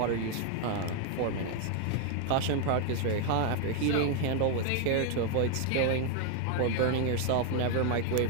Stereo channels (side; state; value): both; different; correlation 0.01